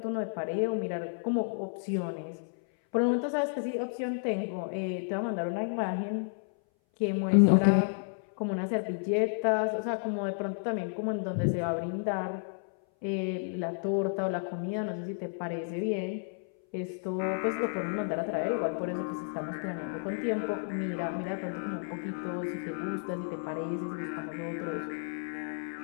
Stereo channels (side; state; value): right; silent; 57 dB below the other